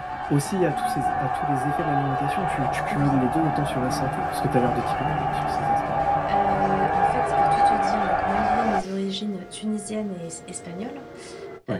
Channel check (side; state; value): both; identical; correlation 1.00